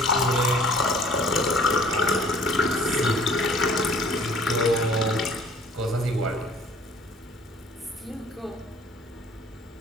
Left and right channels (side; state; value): both; normal; correlation 0.54